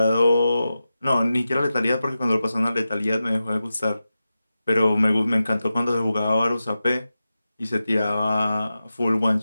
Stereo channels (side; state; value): both; inverted; correlation -0.92